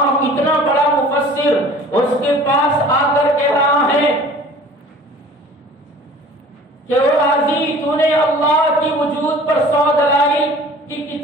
اتنا بڑا مفسر، اس کے پاس آ کر کہہ رہا ہے کہ او راضی، تو نے اللہ کی وجود پر 100 دلائل کی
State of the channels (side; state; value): both; normal; correlation 0.46